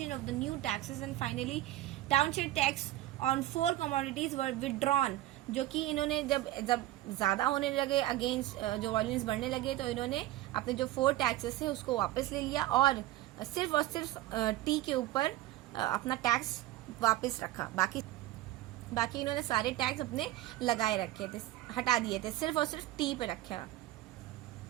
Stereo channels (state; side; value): quieter; left; 15.5 dB